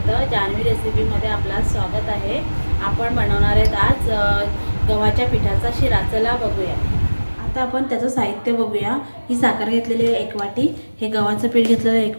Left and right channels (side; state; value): both; inverted; correlation -1.00